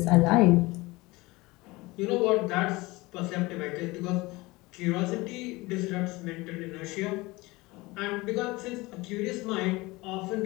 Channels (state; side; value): quieter; right; 22.1 dB